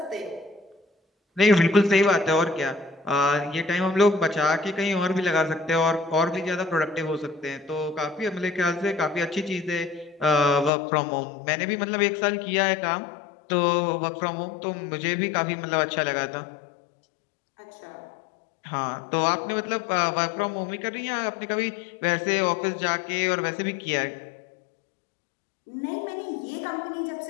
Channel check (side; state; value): right; drops out; at 10.7 s